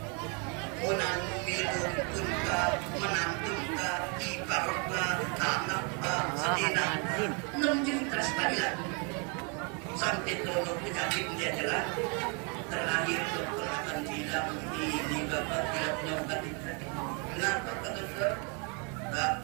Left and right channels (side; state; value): left; quieter; 35.1 dB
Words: menang minum tunka menantunka iparka anakka sedina 6 juta sekali lagi sampai donor penyakit dia jelas terakhir dokter akan bilang ini bapak tidak punya obat kenapa kata dokter